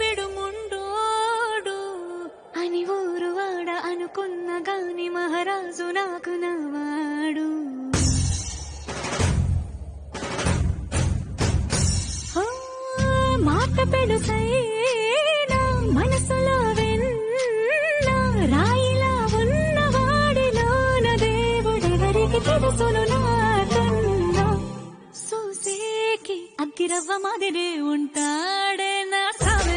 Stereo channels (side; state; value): both; identical; correlation 1.00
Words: అని ఊరు వాడ అనుకున్న గాని మహారాజు నాకు నవ్వాడు. మాట పెడుసైనా మనసులో వెన్న రాయిలా ఉన్నవాడిలోన దేవుడెవరికి తెలుసును నాకన్నా. సూసేకి అగ్గిరవ్వ మాదిరి ఉంటాడే నా